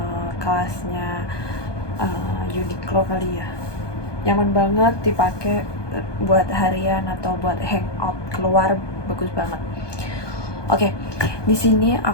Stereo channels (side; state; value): right; late; 1.2 ms